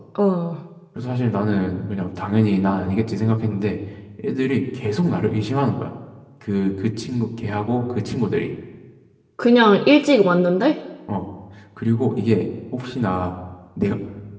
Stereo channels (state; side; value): identical; both; correlation 1.00